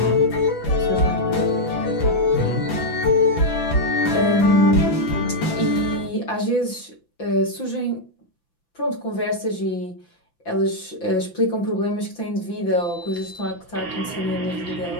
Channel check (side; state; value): right; late; 5.9 ms